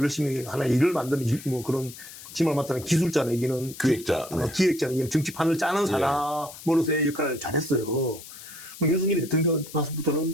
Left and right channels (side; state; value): left; noise; hiss, 15 dB below the sound